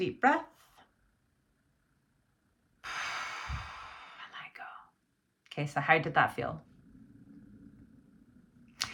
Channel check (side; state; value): both; identical; correlation 1.00